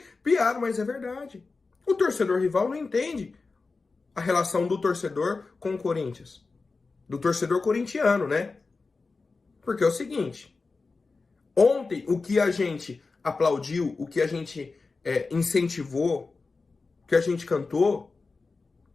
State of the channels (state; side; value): quieter; right; 4.0 dB